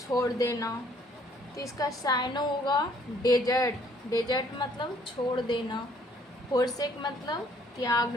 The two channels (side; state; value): both; normal; correlation 0.62